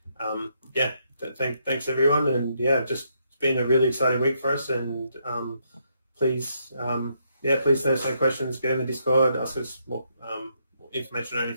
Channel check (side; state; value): both; inverted; correlation -0.76